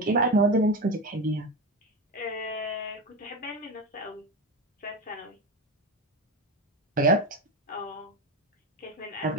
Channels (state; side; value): normal; both; correlation 0.18